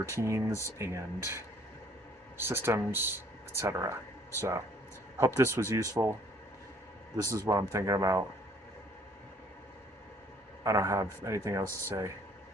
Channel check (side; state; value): both; normal; correlation 0.59